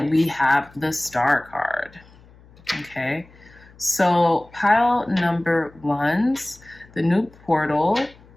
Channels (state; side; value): noise; left; hum, 25 dB below the sound